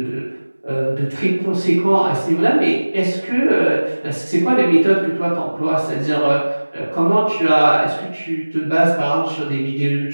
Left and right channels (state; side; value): inverted; both; correlation -1.00